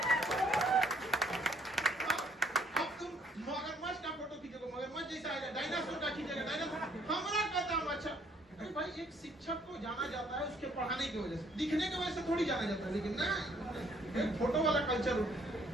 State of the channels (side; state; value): both; normal; correlation 0.64